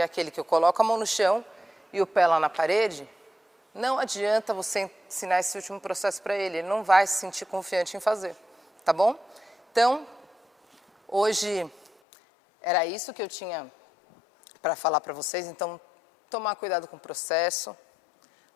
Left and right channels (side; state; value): right; drops out; at 11.9 s